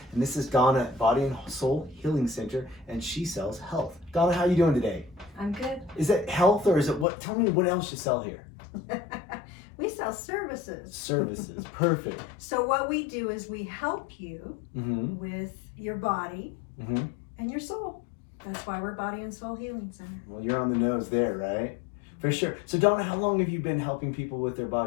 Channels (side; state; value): right; drops out; at 7.1 s